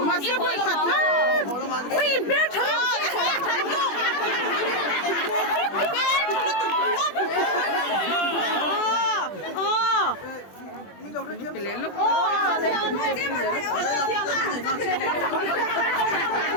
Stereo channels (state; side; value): late; right; 20 ms